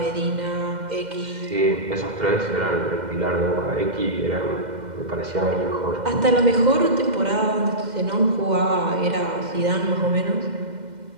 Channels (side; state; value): left; late; 2.1 ms